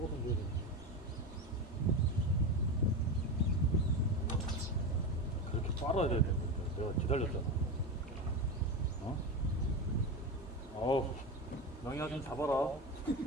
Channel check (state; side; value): normal; both; correlation 0.20